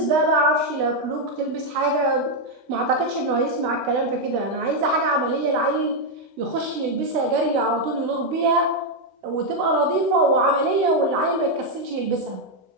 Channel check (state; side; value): late; left; 16 ms